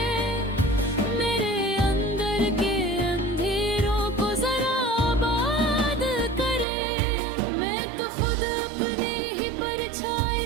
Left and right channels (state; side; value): drops out; left; at 6.7 s